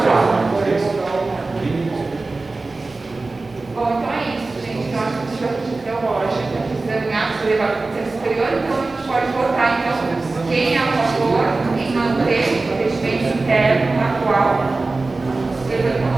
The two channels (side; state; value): left; quieter; 3.5 dB